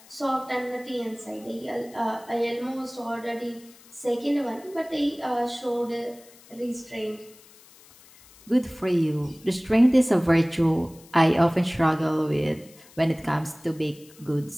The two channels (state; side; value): noise; left; hiss, 24 dB below the sound